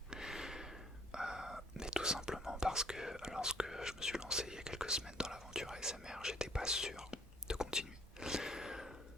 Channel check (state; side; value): normal; both; correlation 0.60